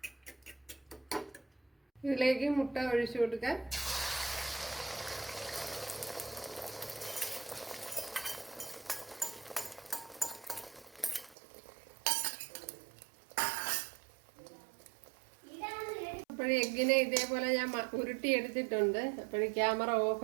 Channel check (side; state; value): left; drops out; at 11.4 s